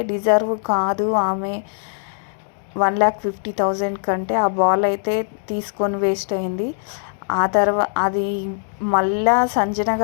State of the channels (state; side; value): silent; right; digital silence